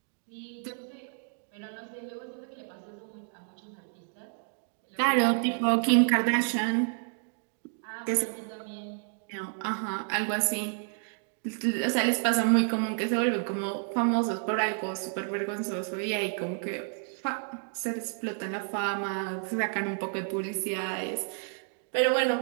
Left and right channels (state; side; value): silent; left; 58 dB below the other